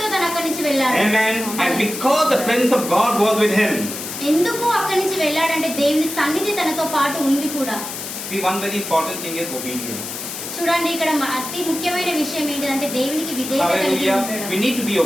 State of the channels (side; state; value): left; noise; hiss, 8 dB below the sound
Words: తను అక్కడి నుంచి వెళ్ళాడు. Amen. And because the presence of God was with him, ఎందుకు అక్కడి నుంచి వెళ్ళాడంటే దేవుని సన్నిధి తనతో పాటు ఉంది కూడా. see, one very important thing is obedience. చూడండి ఇక్కడ అతి ముఖ్యమైన విషయం ఏంటంటే దేవునికి విధేయత కలిగి Hallelujah. ఉండడం. We need to be